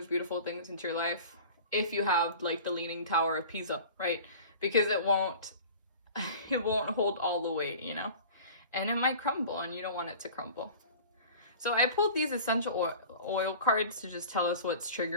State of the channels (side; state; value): both; inverted; correlation -0.41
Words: beautiful things into your life if you have like the Leaning Tower of Pisa, right? Because it won't hold all the weight, you know? And it might crumble, and you don't want it to crumble. So I pulled these essential oil cards to just tell us what's